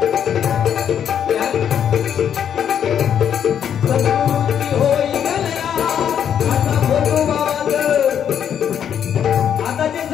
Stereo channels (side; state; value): right; quieter; 8.8 dB